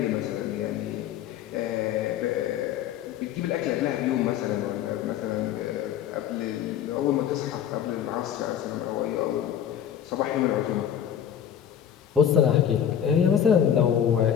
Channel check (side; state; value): right; quieter; 9.5 dB